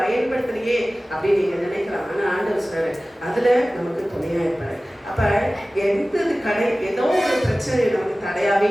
பயன்படுத்தலையே அப்படின்னு நீங்க நினைக்கலாம். ஆனா ஆண்டவர் சொல்றாரு, அதுல நமக்கு துணையா இருப்பாரு. அப்ப ஏதோ ஒரு பிரச்சனை நமக்கு தடையாவே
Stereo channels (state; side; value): normal; both; correlation 0.97